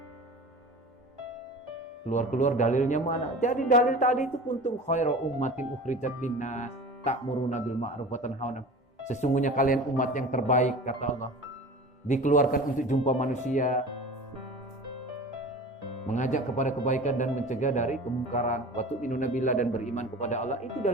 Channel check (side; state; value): both; normal; correlation 0.37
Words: Keluar dalilnya mana? Jadi dalil tadi itu kuntum khairu ummatin ukhrijat linnas ta'muruna bil ma'ruf wa tanhauna. Sesungguhnya kalian umat yang terbaik, kata Allah. Dikeluarkan untuk jumpa manusia, mengajak kepada kebaikan dan mencegah dari kemungkaran. Wa tu'minuna billah, dan beriman kepada Allah. Itu